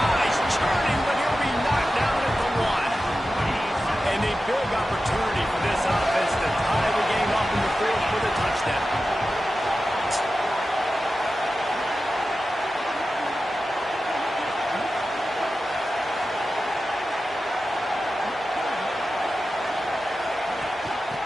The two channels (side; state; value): both; normal; correlation 0.93